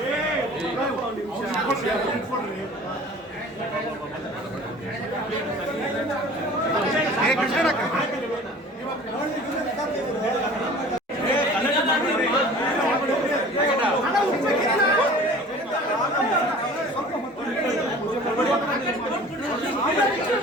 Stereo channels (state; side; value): normal; both; correlation 0.44